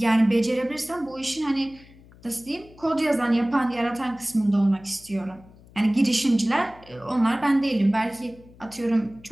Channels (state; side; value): noise; left; hum, 24 dB below the sound